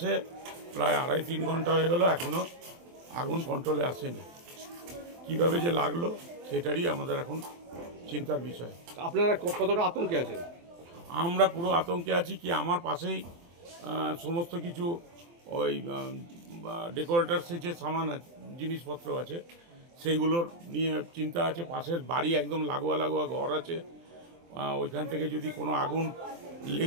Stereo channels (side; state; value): left; late; 23 ms